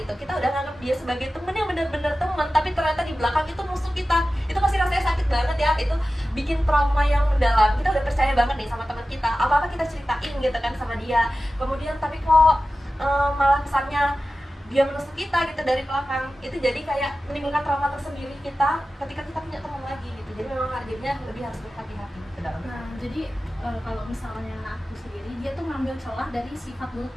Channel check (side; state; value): both; normal; correlation 0.95